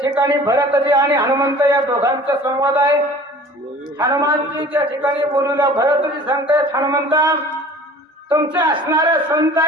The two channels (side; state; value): both; normal; correlation 0.45